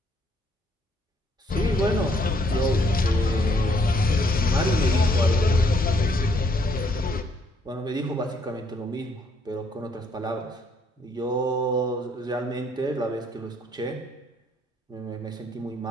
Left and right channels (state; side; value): normal; both; correlation 0.68